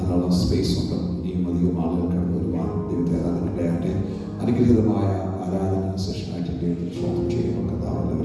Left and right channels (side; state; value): both; identical; correlation 1.00